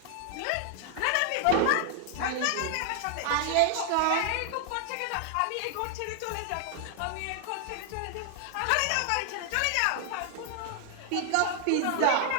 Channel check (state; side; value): different; both; correlation 0.00